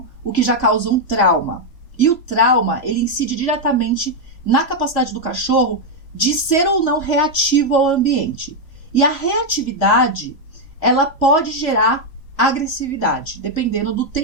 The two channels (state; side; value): late; right; 3.0 ms